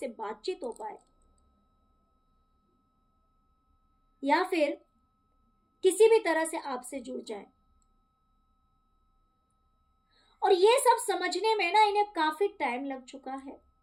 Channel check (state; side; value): identical; both; correlation 1.00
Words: बातचीत हो पाए, या फिर किसी भी तरह से आपसे जुड़ जाए। और ये सब समझने में ना इन्हें काफी टाइम लग चुका है।